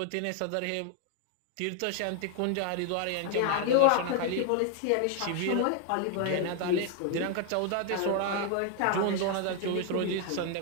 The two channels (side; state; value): both; different; correlation 0.00